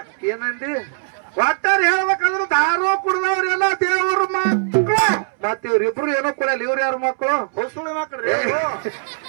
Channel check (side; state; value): left; silent; 65 dB below the other